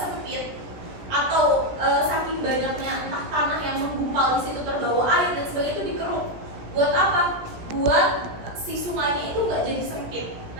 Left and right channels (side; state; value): left; late; 17 ms